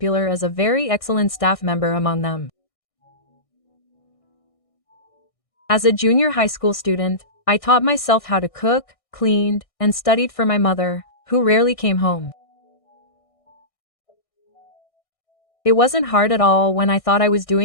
as a very excellent staff member among them. As a junior high school student, I taught myself how to cook, cleaned, and studied for my mother, who rarely came home. It wasn't hard at all when I thought I was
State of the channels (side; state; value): right; late; 1.6 ms